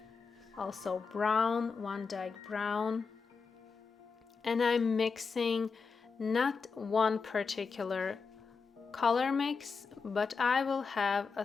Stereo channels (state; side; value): quieter; right; 5.1 dB